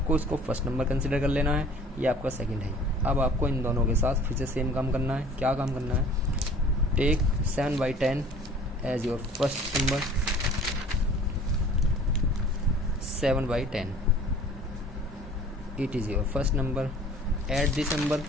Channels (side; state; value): both; normal; correlation 0.49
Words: इसको फर्स्ट नंबर कंसिडर कर लेना है, ये आपका सेकंड है. अब आपको इन दोनों के साथ फिर से सेम काम करना है. क्या काम करना है, take 7/10 as your first number, 7/10 it is your first number. Add this number